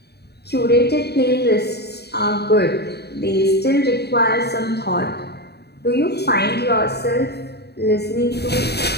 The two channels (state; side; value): late; right; 0.48 ms